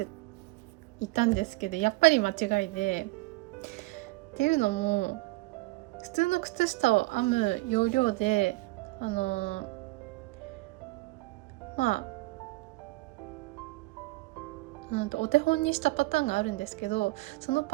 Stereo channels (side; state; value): left; quieter; 21.7 dB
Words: いたんですけど、やっぱり間違いで、っていうのも普通の靴下を編む要領でお手本にしたパターンがあるんですけど、その